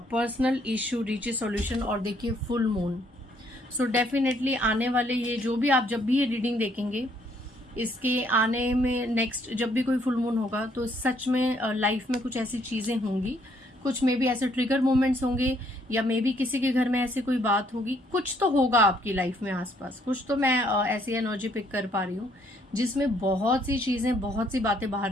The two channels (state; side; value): normal; both; correlation 0.67